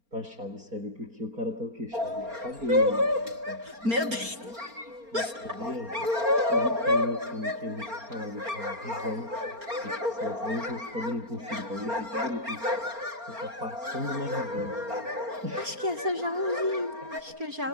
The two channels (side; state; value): left; late; 4.3 ms